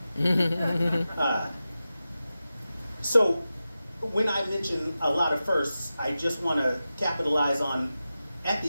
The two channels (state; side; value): inverted; both; correlation -0.93